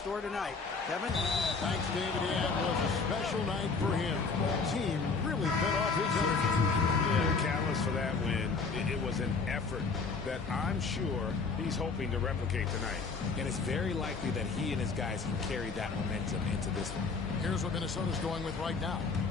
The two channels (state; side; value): quieter; right; 4.6 dB